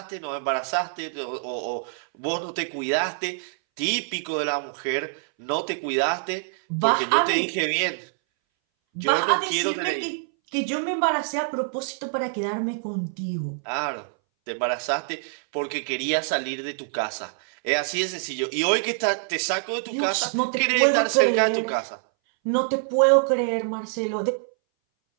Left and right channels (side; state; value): left; silent; 60 dB below the other